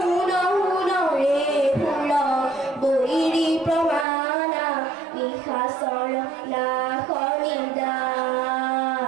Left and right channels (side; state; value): left; drops out; at 4.0 s